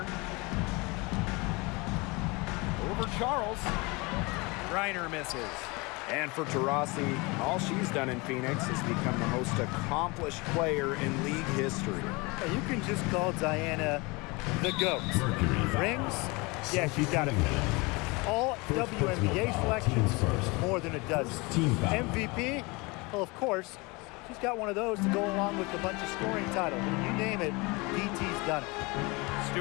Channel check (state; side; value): quieter; right; 26.1 dB